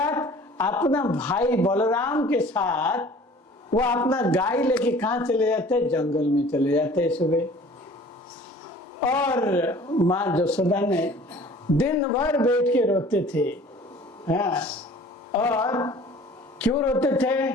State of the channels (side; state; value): both; normal; correlation 0.48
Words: अपना भाई बलराम के साथ वो अपना गाय लेके कहाँ चले जाते, जंगल में चले जाते सुबह। और माँ यशोदा ने दिन भर बैठ के रोते थे। हाँ, और क्यों रोते थे,